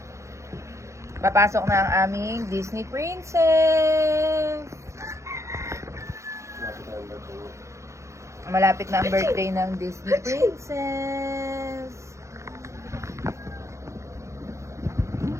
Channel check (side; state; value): left; late; 0.14 ms